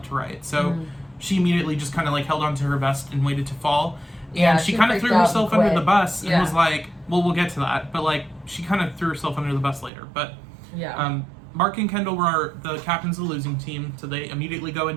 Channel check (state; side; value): drops out; left; at 9.9 s